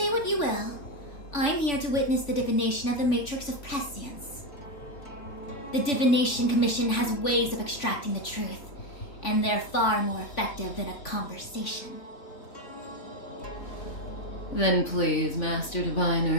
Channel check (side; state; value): right; late; 3.5 ms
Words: what you will. I'm here to witness the divination of the Matrix of Prescience. The Divination Commission has ways of extracting the truth, and they're far more effective than a conversation. Then please, Master